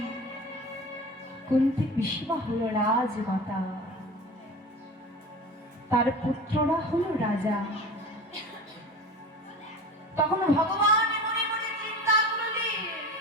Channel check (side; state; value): both; normal; correlation 0.34